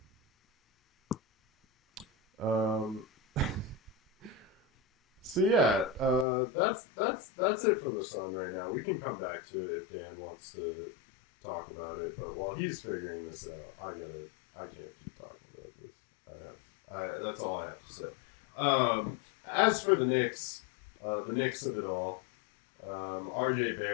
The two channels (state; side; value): drops out; right; at 6.2 s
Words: So yeah, that's it for the Sun right now. We can come back to it if Dan wants to talk about it, but while he's figuring this out, I can't keep talking about this. That's all I have to say. As for the Knicks of it all, RJ